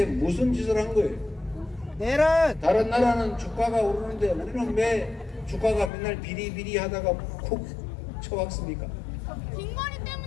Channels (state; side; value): drops out; right; at 5.9 s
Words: 무슨 짓을 한 거예요? 내란. 다른 나라는 주가가 오르는데 우리는 왜 주가가 맨날 비리비리 하다가 쿡 쳐박습니까? 빈머리